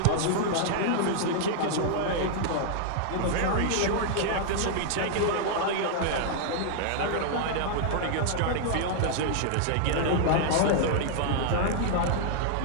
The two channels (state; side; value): different; both; correlation -0.01